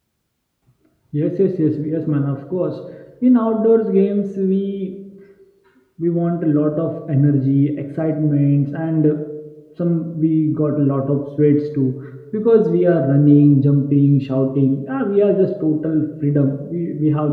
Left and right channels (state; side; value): identical; both; correlation 1.00